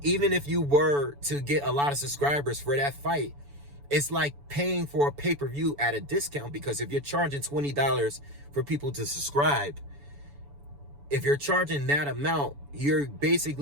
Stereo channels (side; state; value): left; late; 7.0 ms